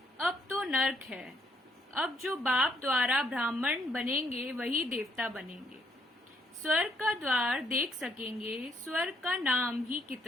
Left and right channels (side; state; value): both; normal; correlation 0.71